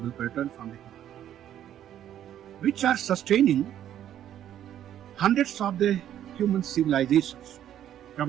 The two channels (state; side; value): quieter; left; 10.9 dB